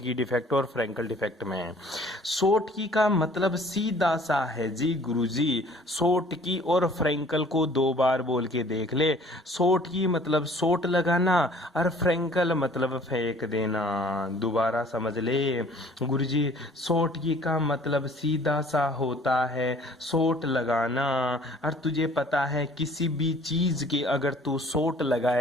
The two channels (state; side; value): normal; both; correlation 0.53